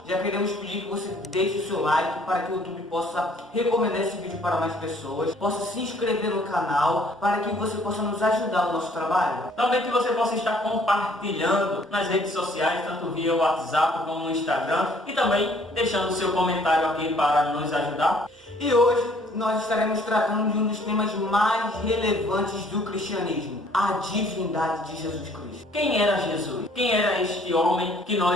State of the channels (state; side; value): normal; both; correlation 0.59